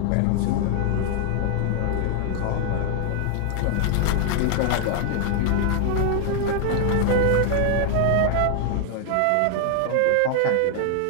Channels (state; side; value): different; both; correlation 0.00